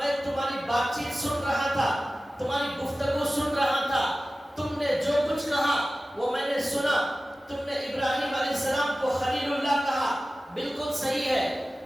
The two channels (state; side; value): normal; both; correlation 0.96